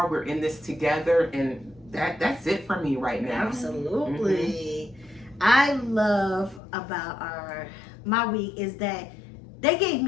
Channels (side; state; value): right; drops out; at 6.6 s